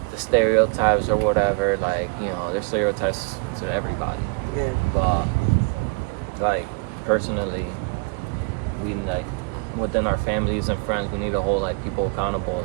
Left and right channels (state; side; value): quieter; left; 34.4 dB